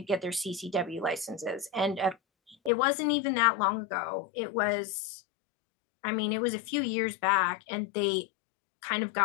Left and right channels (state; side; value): drops out; right; at 2.7 s